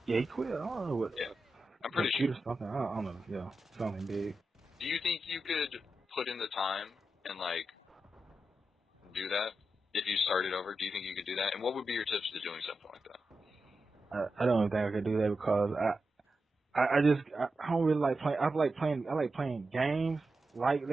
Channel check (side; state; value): both; normal; correlation 0.89